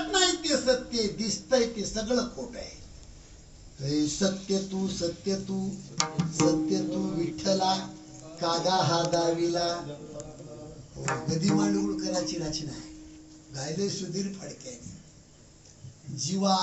नाही ते सत्य आहे, दिसतंय ते सगळं खोट आहे. सत्य तू सत्य तू सत्य तू विठ्ठला कागा हा दाविला. गदी मांडगुळकरांची रचना आहे, गायले सुधीर फडक्याने.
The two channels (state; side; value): identical; both; correlation 1.00